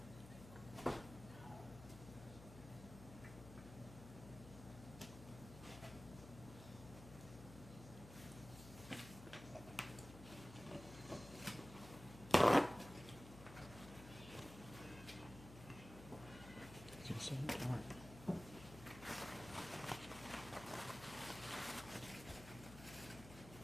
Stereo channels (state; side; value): noise; left; hum, 14 dB below the sound